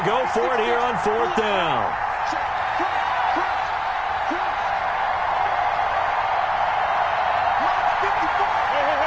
to go for it here on 4th down.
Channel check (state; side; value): identical; both; correlation 1.00